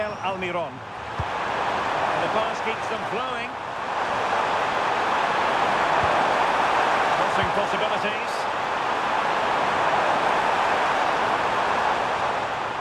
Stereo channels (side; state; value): both; identical; correlation 1.00